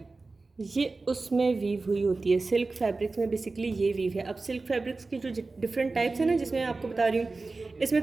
ये उसमें वीव हुई होती है। सिल्क फैब्रिक्स में बेसिकली ये वीव है। अब सिल्क फैब्रिक्स की जो डिफरेंट टाइप्स हैं ना, जिसमें आपको बता रही हूँ, इसमें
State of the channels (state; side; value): quieter; left; 3.6 dB